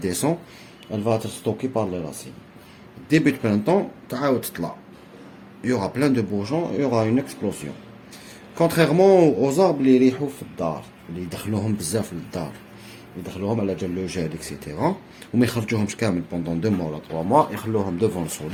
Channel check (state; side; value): identical; both; correlation 1.00